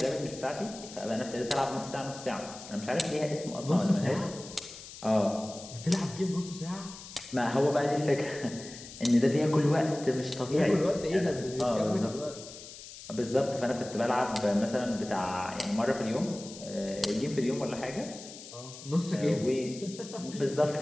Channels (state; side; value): noise; left; hiss, 14 dB below the sound